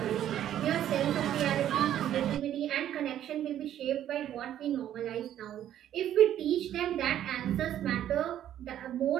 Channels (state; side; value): quieter; left; 11.3 dB